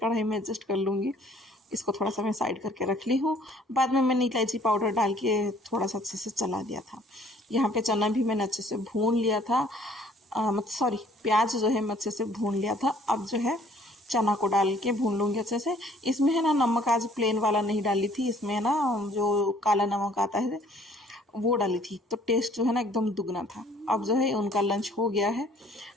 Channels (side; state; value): both; normal; correlation 0.58